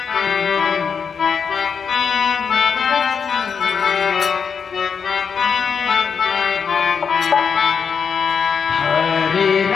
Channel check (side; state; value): right; quieter; 6.3 dB